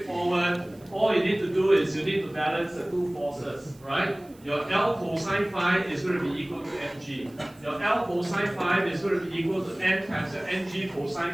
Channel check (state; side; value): noise; right; hiss, 28 dB below the sound